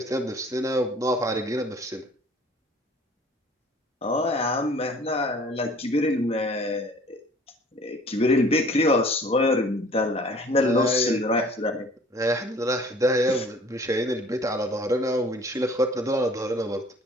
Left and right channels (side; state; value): both; normal; correlation 0.51